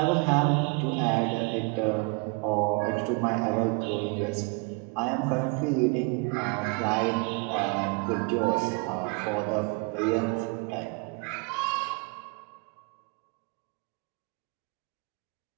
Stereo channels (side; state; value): left; quieter; 31.4 dB